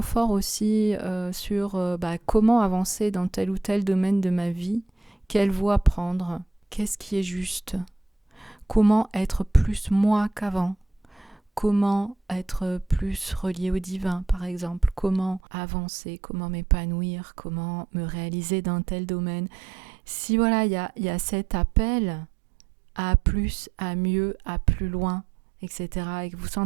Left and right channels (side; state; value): left; drops out; at 15.4 s